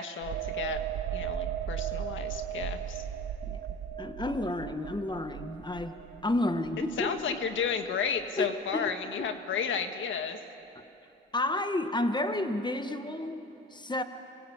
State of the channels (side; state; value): both; normal; correlation 0.37